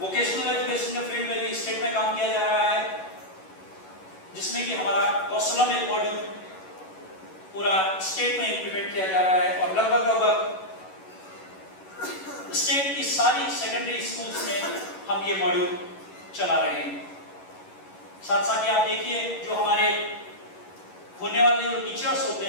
वोकेशनल एजुकेशन के फील्ड में भी स्टेट में काम किया जा रहा है, जिसमें कि हमारा कौशलम एक मॉड्यूल पूरा स्टेट में इंप्लीमेंट किया जा रहा है और लगभग स्टेट की सारी सेकेंडरी स्कूल्स में हम ये मॉड्यूल चला रहे हैं। साथ साथ आप देखिए जो हमारे होने वाले जो टीचर्स होते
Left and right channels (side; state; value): right; late; 11 ms